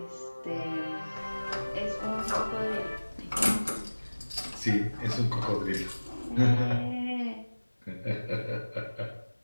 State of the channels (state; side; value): inverted; both; correlation -1.00